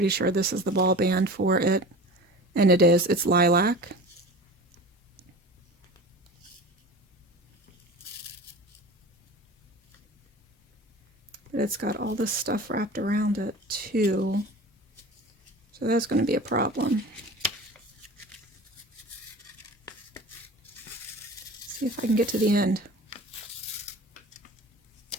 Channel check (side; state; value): both; normal; correlation 0.37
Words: sure this is the ball band for it. And it is. It's lilac. But it's got all this stuff wrapped around it, too. So that's going to be a problem. See if I can get to the end.